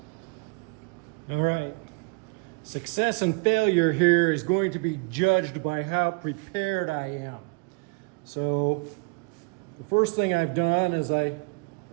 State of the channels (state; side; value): quieter; left; 31.1 dB